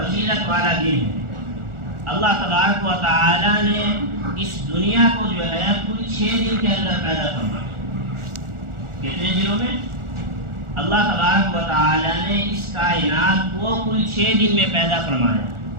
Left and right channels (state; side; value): late; left; 1.4 ms